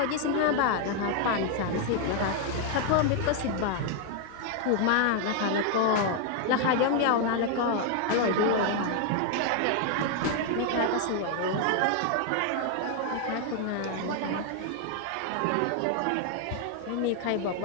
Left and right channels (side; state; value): both; different; correlation 0.00